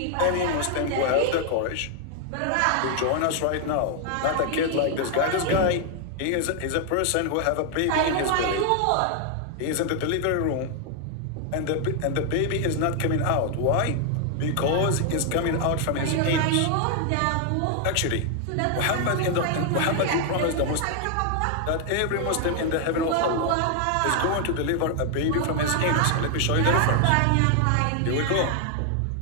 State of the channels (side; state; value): both; different; correlation 0.00